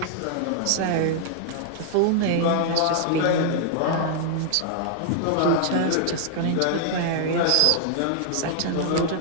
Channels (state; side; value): different; both; correlation -0.01